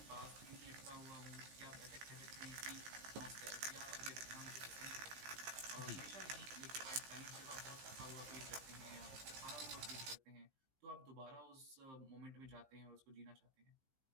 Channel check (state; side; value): late; left; 15 ms